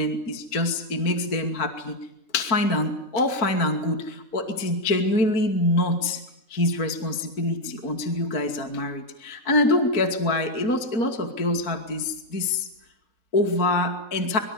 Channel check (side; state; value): right; late; 4.4 ms